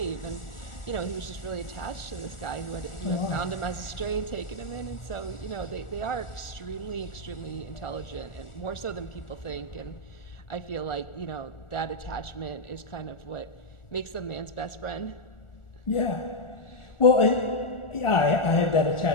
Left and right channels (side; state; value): right; late; 1.4 ms